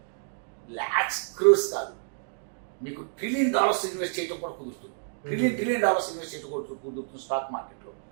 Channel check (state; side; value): silent; left; digital silence